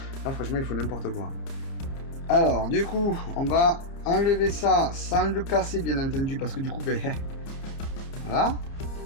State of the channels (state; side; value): late; right; 30 ms